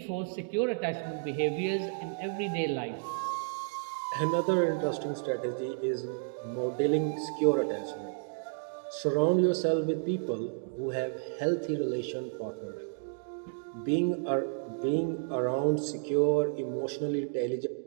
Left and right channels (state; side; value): silent; left; digital silence